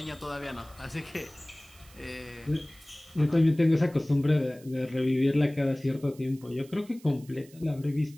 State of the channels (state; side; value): noise; right; hiss, 25 dB below the sound